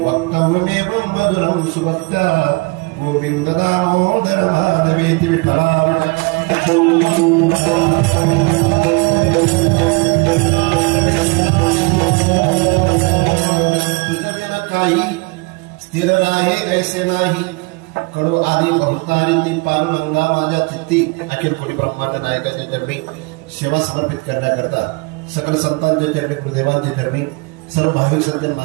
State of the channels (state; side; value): quieter; left; 28.9 dB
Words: मधुरं सुभक्त्या, गोविंद दामोदर माधवेति. विठ्ठला तुझं बिना काही स्थिर राहे ऐसे नाही, कडो आली बहुतारिती पांडुरंगा माझ्या चित्ती. अखिल कोटी ब्रह्मांड नायकाच्या चरणी सेवा समर्पित करण्याकरता सकल संतांच्या चरणी, गुरुदेवांच्या चरणी, सर्व भाविक सज्जन